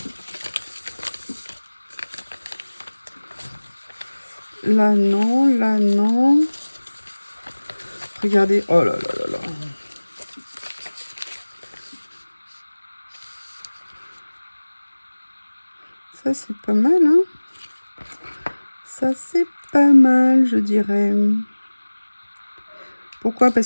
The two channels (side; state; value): both; inverted; correlation -1.00